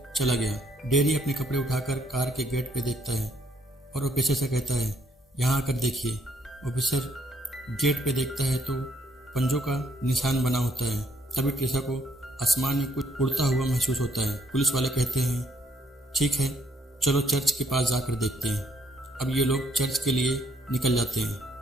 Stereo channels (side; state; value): both; normal; correlation 0.69